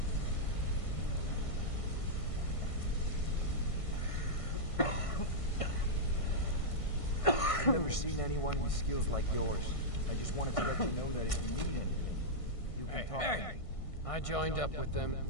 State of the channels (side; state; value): right; late; 1.6 ms